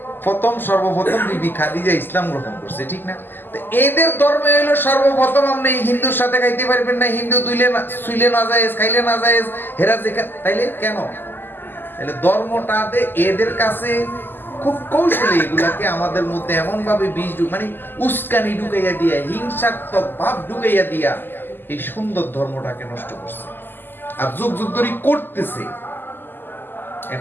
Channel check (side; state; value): right; late; 0.094 ms